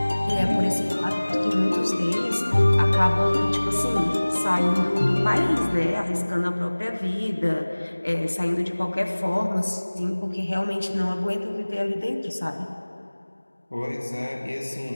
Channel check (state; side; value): inverted; both; correlation -1.00